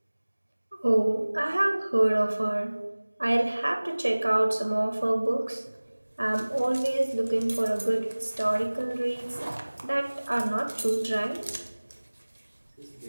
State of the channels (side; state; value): both; inverted; correlation -1.00